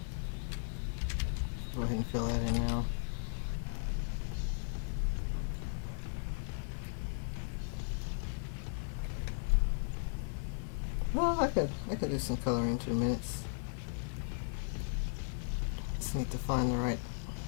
Go ahead and fill that in now. Well, I could do some coloring in 2 minutes. Just need to find the right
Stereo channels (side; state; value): right; silent; 53 dB below the other